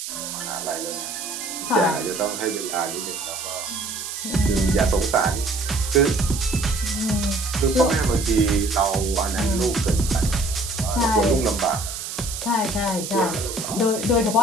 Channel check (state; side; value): noise; right; hiss, 7 dB below the sound